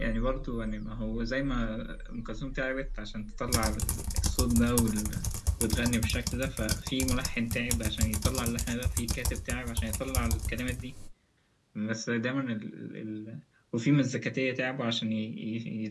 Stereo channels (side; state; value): both; identical; correlation 1.00